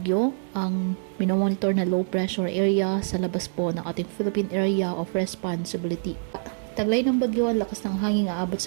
ang minomonitor na low pressure area sa labas po ng ating Philippine Area of Responsibility. Taglay ng bagyo, ang lakas ng hangin aabot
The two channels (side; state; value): left; silent; digital silence